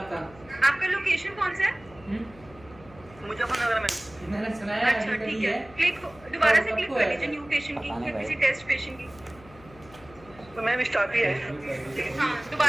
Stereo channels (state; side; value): noise; left; hum, 22 dB below the sound